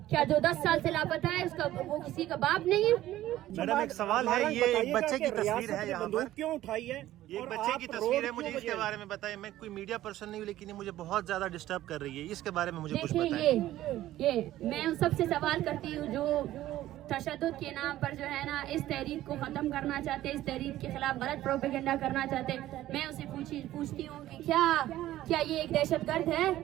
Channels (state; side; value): quieter; left; 14.3 dB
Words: کیا جو 10 سال سے لاپتہ ہے اس کا وہ کسی کا باپ نہیں ہے؟ میڈم ایک سوال ہے، یہ ایک بچے کی تصویر ہے یہاں پر، کیوں اٹھائی ہے؟ یہ ایک بچے کی تصویر ہے، مجھے اس کے بارے میں بتائیں. میں کوئی میڈیا پرسن نہیں ہوں لیکن یہ مجھے بہت زیادہ ڈسٹرب کر رہی ہے، اس کے بارے میں مجھے کچھ بتائیں. دیکھیں یہ میں ان سب سے سوال کرتی ہوں جو تشدد کے نام پر جو ہے نا اس تحریک کو ختم کرنا چاہتے ہیں، اس تحریک کے خلاف غلط پروپیگنڈا کرنا چاہتے ہیں. میں اسے پوچھتی ہوں کہ کیا یہ ایک دہشت گرد ہے؟